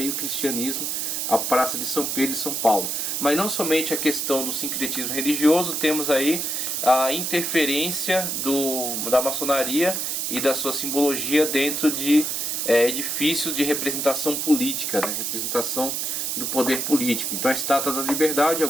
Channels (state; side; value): noise; right; hiss, 1 dB below the sound